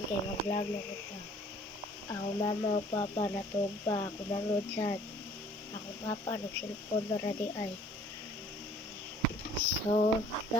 kay mag-vlog na kita. Ako mama o papa natug pa ako mangod sad. Ako papa nagselfon na ra di ay. So,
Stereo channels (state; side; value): normal; both; correlation 0.55